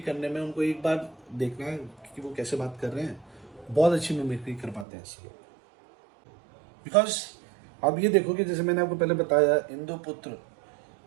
करने में उनको एक बार देखना है कि वो कैसे बात कर रहे हैं, बहुत अच्छी मिमिक्री कर पाते हैं ऐसे लोग। बिकॉज अब ये देखो कि जैसे मैंने आपको पहले बताया इंद्रपुत्र,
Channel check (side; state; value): left; drops out; at 4.9 s